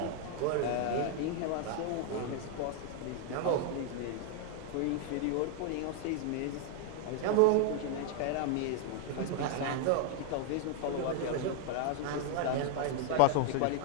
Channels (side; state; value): both; different; correlation 0.00